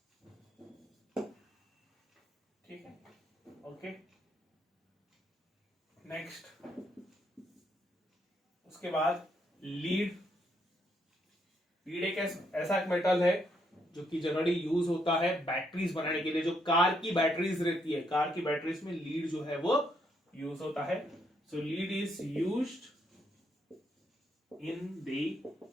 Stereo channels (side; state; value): both; normal; correlation 0.74